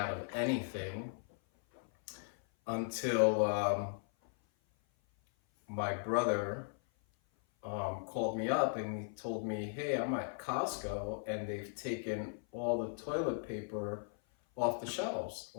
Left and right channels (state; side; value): silent; right; 53 dB below the other